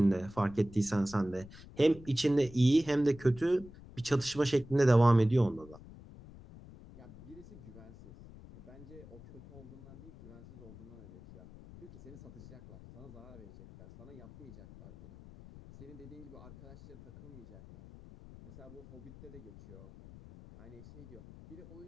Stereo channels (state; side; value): noise; left; rumble, 18 dB below the sound